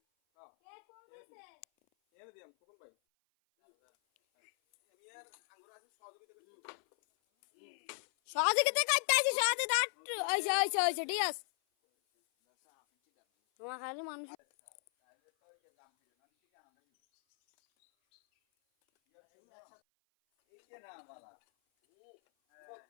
হ্যাঁ কে কোন দিছে এনে দিয়াম কোন ভাই আমি আর আঙ্গুর আছে সহযোগিতা করছি সহযোগিতা করতে আছি সহযোগিতা ওইছে ঠিক আছে তোমার খালি মানুষ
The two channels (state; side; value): silent; right; 54 dB below the other